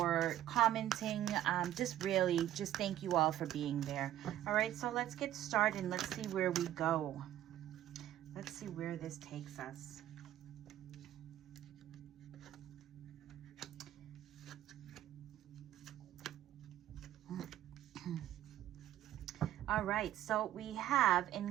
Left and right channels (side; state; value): left; quieter; 12.6 dB